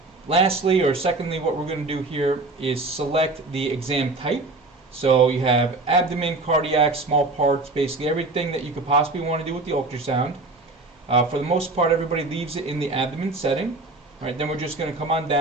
Lastly, or secondly, what we're going to do here is select the exam type. So you have abdomen, cardiac, small parts, basically everything that you could possibly want to do with the ultrasound. For the most part, everybody leaves it in the abdomen setting. Right, then we're just going to come on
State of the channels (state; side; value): quieter; left; 3.3 dB